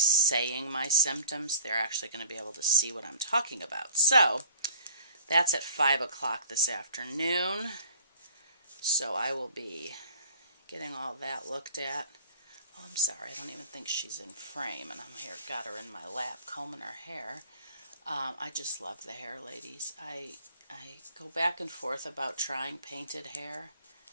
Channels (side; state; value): both; inverted; correlation -0.49